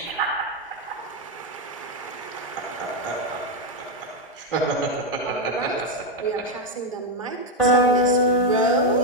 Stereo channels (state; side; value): normal; both; correlation 0.05